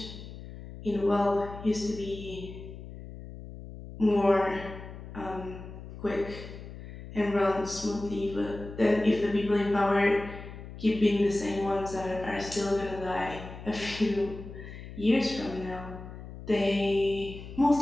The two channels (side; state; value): left; noise; hum, 13 dB below the sound